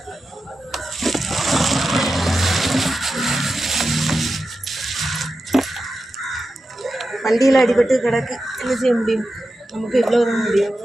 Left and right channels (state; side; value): normal; both; correlation 0.91